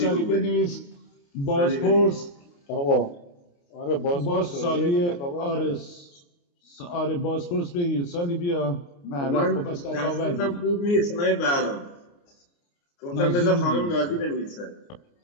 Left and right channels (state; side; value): late; right; 29 ms